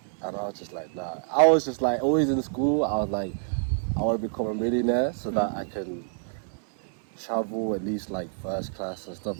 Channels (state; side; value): silent; left; 59 dB below the other